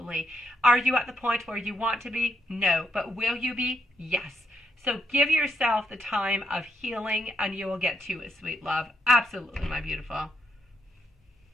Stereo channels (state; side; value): normal; both; correlation 0.78